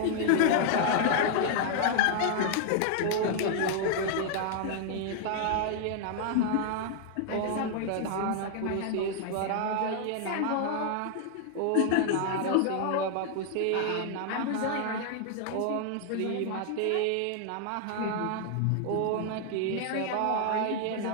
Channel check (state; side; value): different; both; correlation 0.00